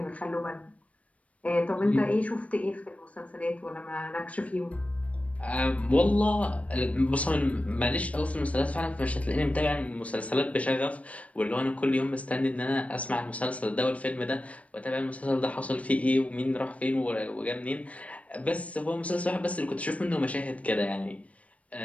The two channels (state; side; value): late; right; 0.066 ms